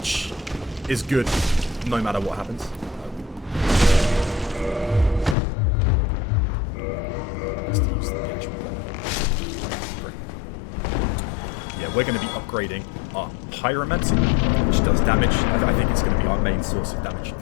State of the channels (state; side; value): drops out; right; at 5.4 s